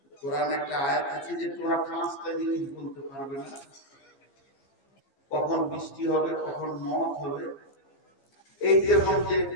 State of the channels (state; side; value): late; right; 15 ms